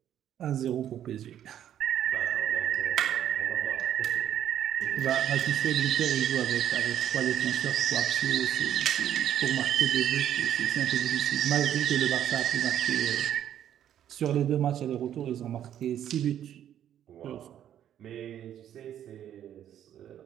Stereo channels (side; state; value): left; quieter; 10.6 dB